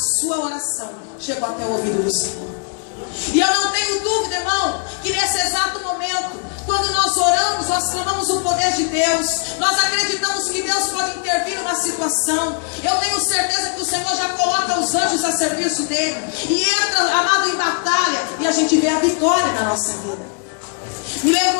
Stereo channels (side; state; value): right; quieter; 38.7 dB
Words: oração chegou até o ouvido do Senhor. E eu não tenho dúvida, irmão, que nesse exato momento, quando nós oramos, nós clamamos o poder de Deus. Nós acreditamos que Deus pode intervir numa situação. Eu tenho certeza que o Senhor já coloca os anjos a serviço dele e entra, amado, em batalha, e a gente vê a vitória na nossa vida. Me